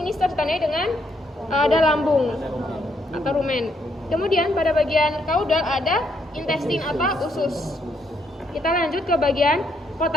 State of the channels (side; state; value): both; normal; correlation 0.74